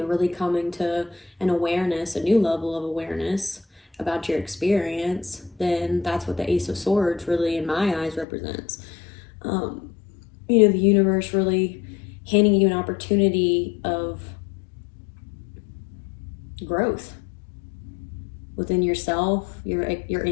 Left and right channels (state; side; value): drops out; right; at 8.2 s